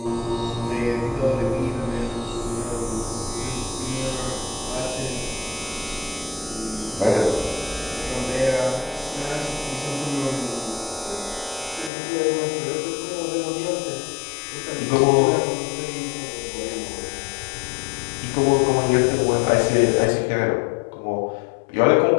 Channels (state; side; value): drops out; right; at 11.9 s